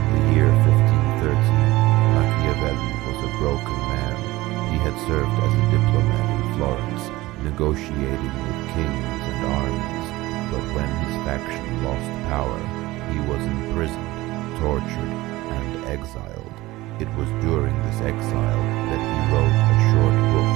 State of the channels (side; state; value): left; quieter; 18.8 dB